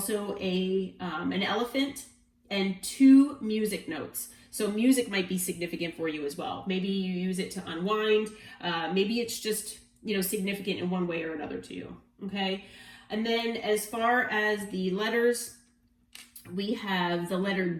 an elephant and 2 music notes. So music might be significant for you as well. Maybe you use it to unwind. Maybe it's just, significant in one way or another to you. Okay. And then as far as the letters, we have the letter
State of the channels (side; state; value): both; identical; correlation 1.00